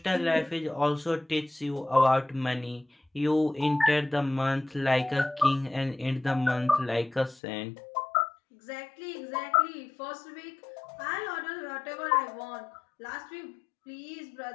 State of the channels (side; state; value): right; drops out; at 7.4 s